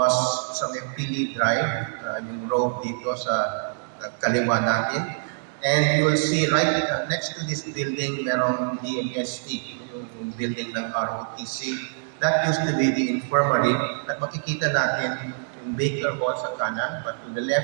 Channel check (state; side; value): silent; left; digital silence